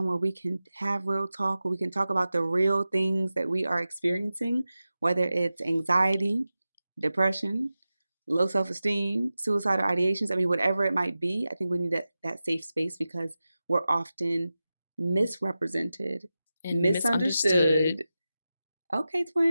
where we can have real talk, where we can talk about the real things that we are experiencing, whether it's anxiety, depression, low self-esteem, suicidal ideations. I mean, whatever it might be, I think we need that safe space because we're often misrepresented and misunderstood. Okay,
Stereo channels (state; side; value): inverted; both; correlation -0.94